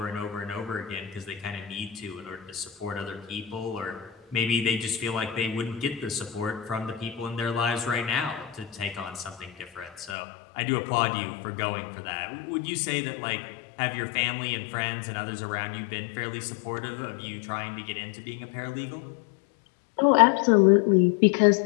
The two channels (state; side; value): drops out; right; at 10.2 s